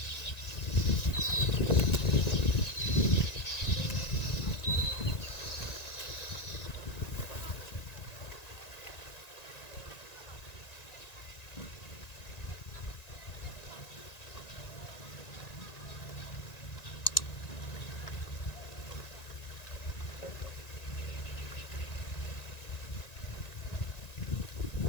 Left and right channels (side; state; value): right; late; 1.9 ms